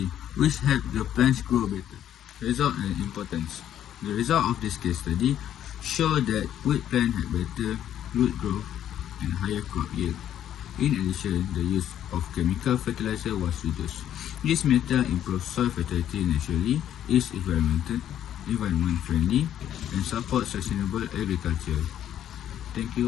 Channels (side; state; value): right; quieter; 10.8 dB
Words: which helps the plants grow better. Result and importance. The result of this case study show that wheat plants have better root growth and higher crop yield. In addition, the use of chemical fertilizer was reduced. This method improves soil fertility naturally, is environment friendly, and supports sustainable agriculture. Thank